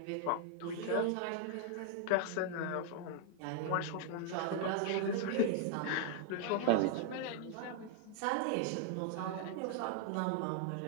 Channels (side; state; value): both; different; correlation 0.00